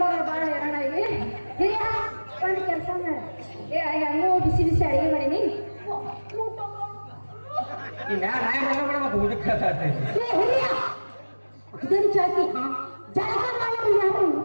ಬಾಳ ಹೇಳೋಣ ಇಲ್ಲಿ ಹಿರಿಯ ಒಂದು ಕೆಲಸ ಮಾಡ ಹೆಂಗೋ ಬಿಸಿ ಬಿಸಿ ಅಡಿಗೆ ಮಾಡೀನಿ ಈ ನಾಯಿ ಮಾಡ್ಕೊಂಡ್ಬಿಡ ಮತ್ತೆ ಊಟಕ್ಕೆ ಹಿರಿಯ ಇದನ್ನು ಚಾಕಿ ಜಳಕ ಮಾಡೋರು ಯಾರು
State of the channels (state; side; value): inverted; both; correlation -1.00